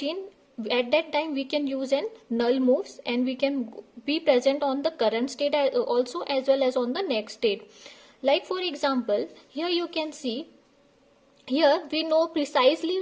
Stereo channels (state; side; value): identical; both; correlation 1.00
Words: At that time we can use an null moves, and we can be present on the current state also, as well as on the next state. Like for example, here you can see, here we know precisely